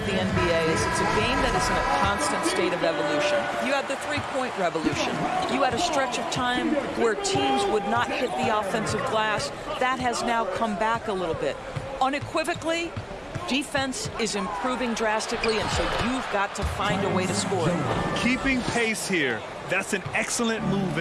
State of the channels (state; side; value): identical; both; correlation 1.00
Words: the NBA is it's a game that is in a constant state of evolution. You had the three-point revolution. You had a stretch of time where teams would not hit the offensive glass. That has now come back a little bit. Unequivocally, defense is improving drastically, and so you've got to find a way to score it. Keeping pace here. That's an excellent move